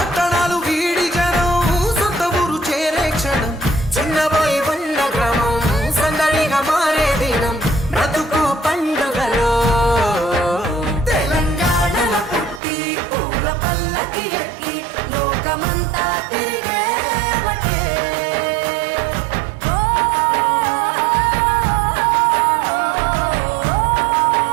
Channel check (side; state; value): left; drops out; at 12.6 s